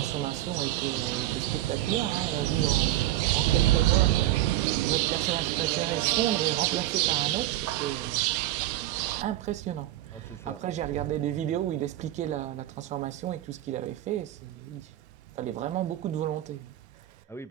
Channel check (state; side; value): quieter; left; 14.4 dB